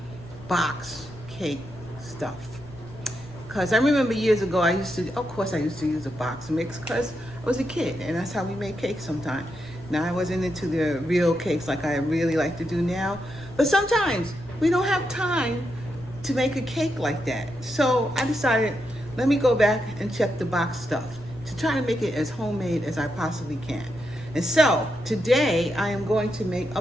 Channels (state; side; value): noise; left; rumble, 21 dB below the sound